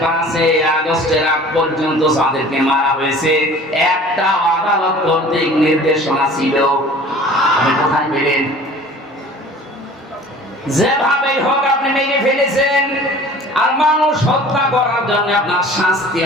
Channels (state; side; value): normal; both; correlation 0.46